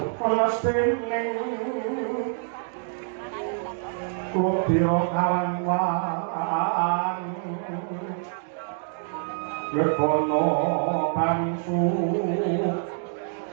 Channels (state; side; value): silent; left; 61 dB below the other